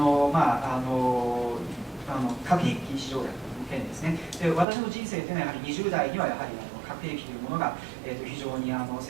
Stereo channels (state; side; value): drops out; left; at 4.7 s